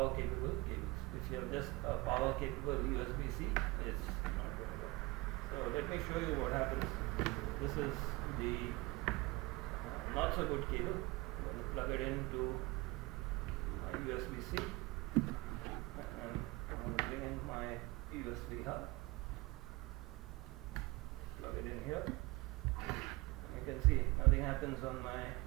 capable cables. If you have just a power capable USB-C, it's not going to work. So let me show you what happens. This is the not so good cable. I'm going to plug it into USB-C, and I'm going to bring in my USB hub, plug it in here. You can see nothing happens on my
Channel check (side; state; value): left; quieter; 22.7 dB